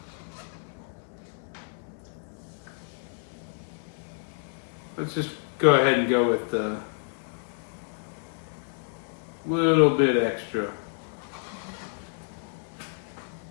Let's just go ahead and go with a little bit extra.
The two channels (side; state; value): right; silent; 58 dB below the other